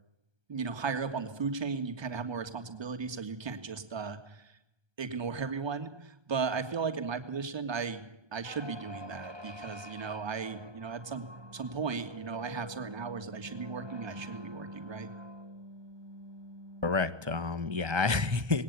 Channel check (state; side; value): late; left; 1.3 ms